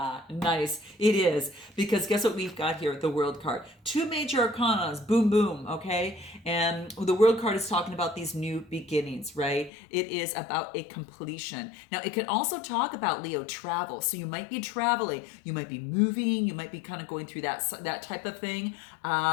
Nice. It is, because guess what we've got here with the World card? Two major arcanas. Boom, boom. Okay. And the World card is talking about these new beginnings, right? It is about a completion. Now, it can also talk about, Leo, travel. So you might be traveling, you might be moving, you might be kind of going through that type of thing.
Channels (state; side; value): drops out; right; at 9.7 s